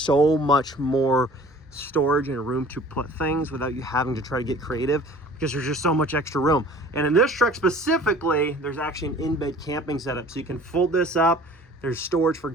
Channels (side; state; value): both; normal; correlation 0.48